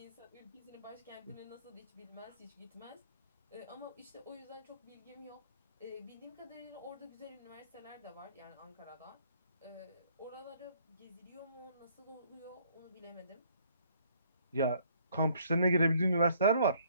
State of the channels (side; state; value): both; inverted; correlation -0.63